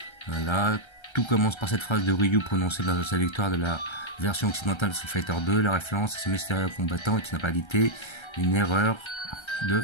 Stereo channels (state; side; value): late; right; 1.3 ms